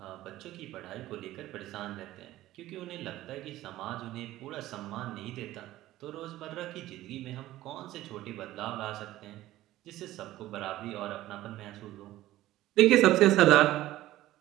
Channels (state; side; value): quieter; left; 15.4 dB